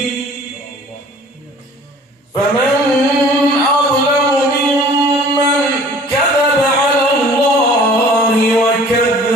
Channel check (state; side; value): normal; both; correlation 0.49